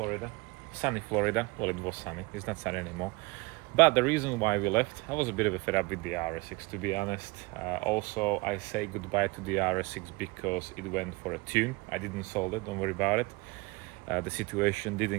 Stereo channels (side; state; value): left; quieter; 24.6 dB